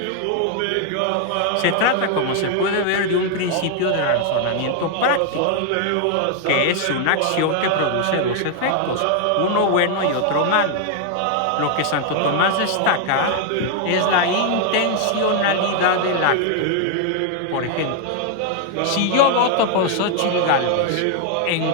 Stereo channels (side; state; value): both; different; correlation 0.00